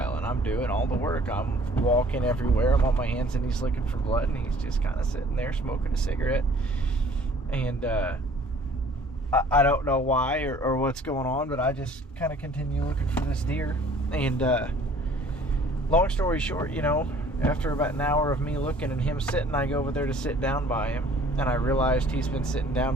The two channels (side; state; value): both; normal; correlation 0.53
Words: and I'm doing all the work. I'm walking everywhere. I'm on my hands and knees looking for blood, and he's just kind of sitting there smoking a cigarette. And I don't know why or what's going on, but I just kind of continue looking for this deer. And long story short, you know, after about an hour of me looking and him sitting, I go over there to sit down by him, and I realized he's been sitting